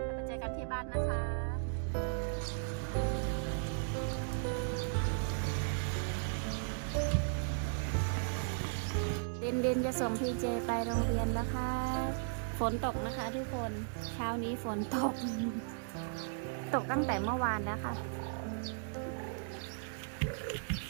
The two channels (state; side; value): silent; left; digital silence